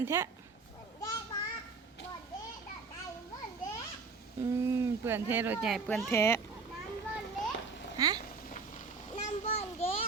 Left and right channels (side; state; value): left; quieter; 4.6 dB